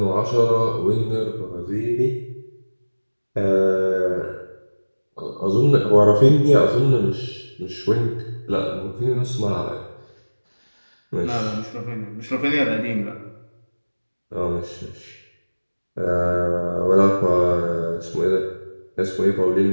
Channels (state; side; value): inverted; both; correlation -1.00